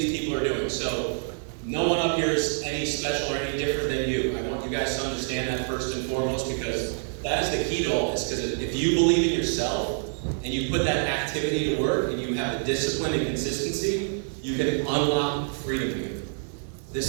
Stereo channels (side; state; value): left; silent; digital silence